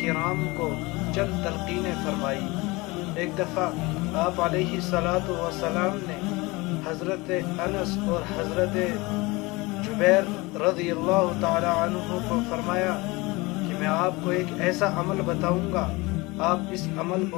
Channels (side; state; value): right; quieter; 23.5 dB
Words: کرام کو چند تلقینیں فرمائی۔ ایک دفعہ آپ علیہ الصلاۃ والسلام نے حضرت انس اور حضرت جبیر رضی اللہ تعالی عنہ کو فرمایا کہ میں آپ کو ایک ایسا عمل بتاؤں گا، آپ اس عمل